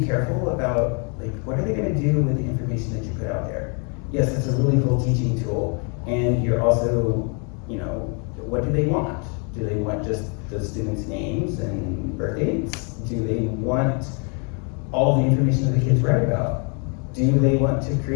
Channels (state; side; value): quieter; right; 37.2 dB